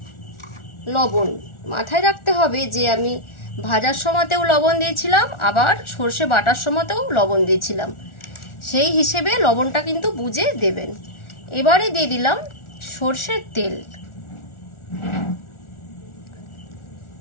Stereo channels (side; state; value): right; late; 1.4 ms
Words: লবণ। মাথায় রাখতে হবে যে আমি ভাজার সময়তেও লবণ দিয়েছিলাম, আবার সর্ষে বাটার সময়তেও লবণ দিয়েছিলাম, সেই হিসেবে লবণটা কিন্তু বুঝে দেবেন। এবারে দিয়ে দিলাম সর্ষের তেল।